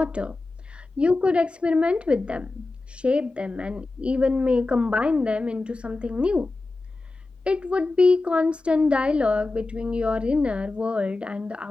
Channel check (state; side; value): quieter; right; 3.3 dB